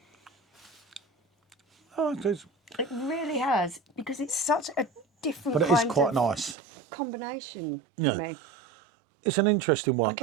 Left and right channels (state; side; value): drops out; left; at 6.6 s